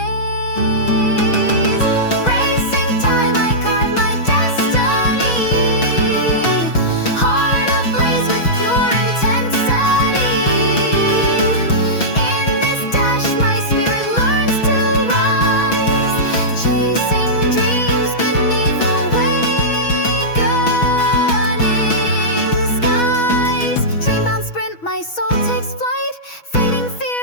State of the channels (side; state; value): right; late; 6.2 ms